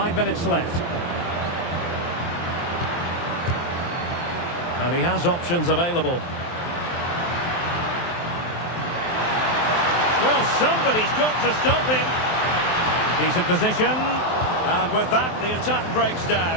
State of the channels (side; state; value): right; late; 23 ms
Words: minutes left. And he has options available. Well, somebody's got to stop him. Decent position. And with that, the attack breaks